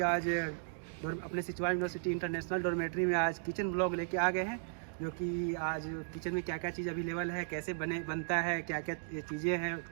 आज अपने Sichuan university international dormitory में आज kitchen blog लेके आ गए हैं, जो कि आज किचन में क्या क्या चीज़ अवेलेबल है, कैसे बनता है, क्या क्या चीज़ें हैं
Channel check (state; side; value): silent; left; digital silence